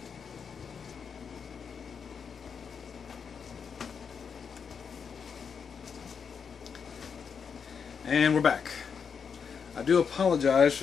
And we're back. I do apologize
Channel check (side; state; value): right; quieter; 6.4 dB